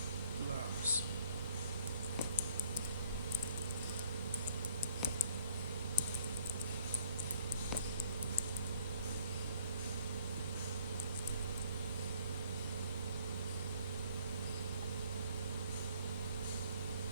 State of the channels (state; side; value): inverted; both; correlation -0.61